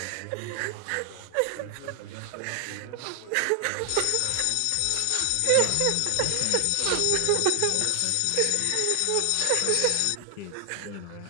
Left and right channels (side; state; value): both; different; correlation 0.00